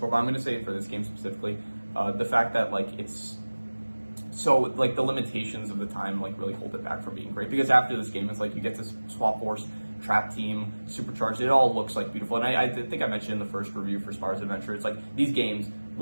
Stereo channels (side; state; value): both; inverted; correlation -1.00